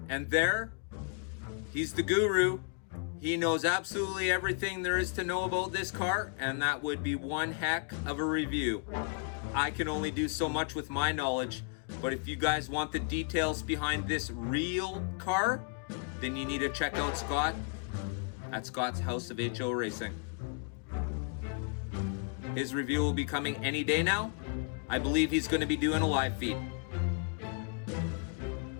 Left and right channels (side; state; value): right; quieter; 39.2 dB